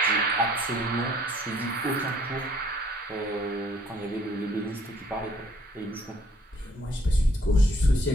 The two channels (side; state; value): both; normal; correlation 0.62